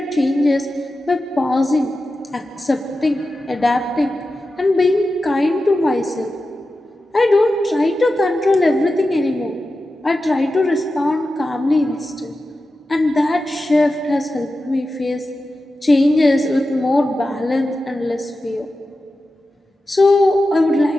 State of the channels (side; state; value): both; normal; correlation 0.92